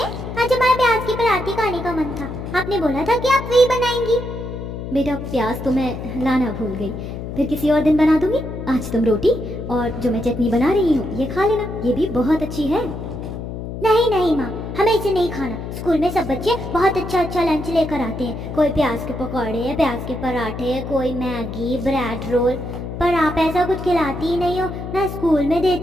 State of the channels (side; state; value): left; noise; hum, 7 dB below the sound